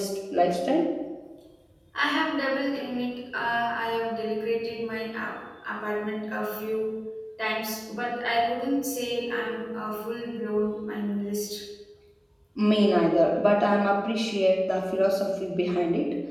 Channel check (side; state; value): both; identical; correlation 1.00